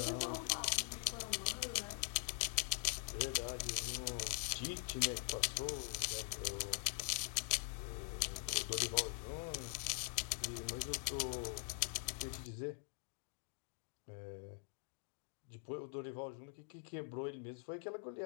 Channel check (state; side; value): silent; right; digital silence